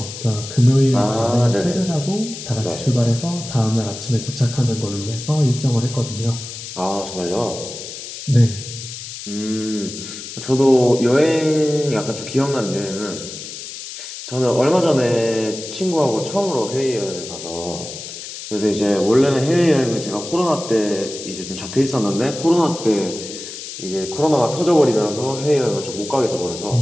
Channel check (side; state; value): left; noise; hiss, 10 dB below the sound